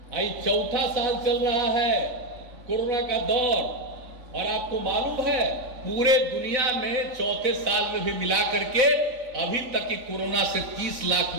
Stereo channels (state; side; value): late; left; 4.0 ms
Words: आई चौथा साल चल रहा है कोरोना का दौर, और आपको मालूम है पूरे दुनिया में चौथे साल में भी मिला करके अभी तक की कोरोना से 30 लाख